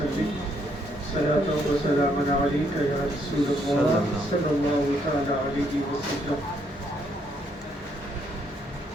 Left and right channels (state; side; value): normal; both; correlation 0.72